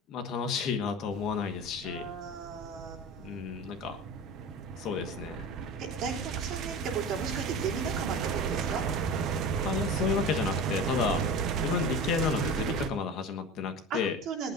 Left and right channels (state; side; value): normal; both; correlation 0.31